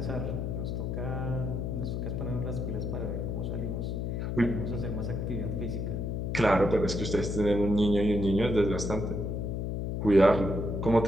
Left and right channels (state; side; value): noise; left; hum, 2 dB below the sound